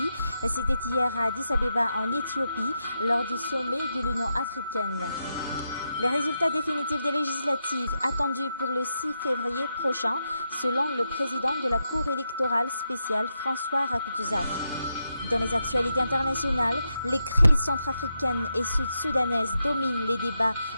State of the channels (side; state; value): both; inverted; correlation -0.85